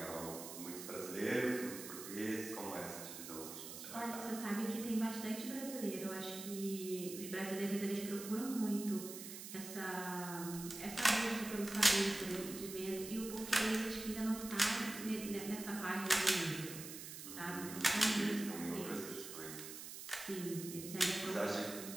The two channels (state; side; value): noise; right; hiss, 10 dB below the sound